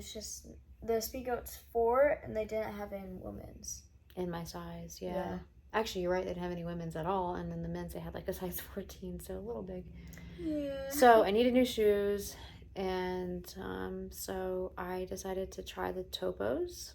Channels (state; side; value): identical; both; correlation 1.00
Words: just the Speedgoat's 4 and they didn't have any women's. In my size, yeah. Actually, you're right, they didn't have any women's at all. And then the men's, they had like a size 14, so a little big. Yeah. So I needed new shoes. And so I decided to try the Topos.